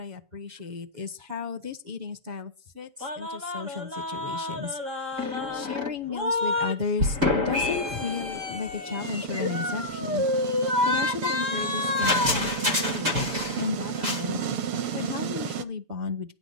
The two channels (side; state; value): left; late; 7.0 ms